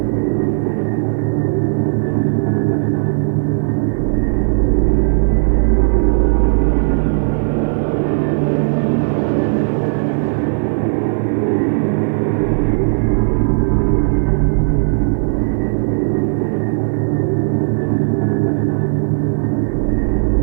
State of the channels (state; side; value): silent; left; digital silence